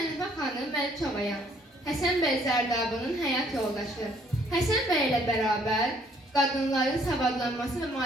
xanım Məlikovayam. Həsən bəy Zərdabının həyat yoldaşı. Həsən bəy ilə bərabər qadınların savadlanması və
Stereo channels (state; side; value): normal; both; correlation 0.64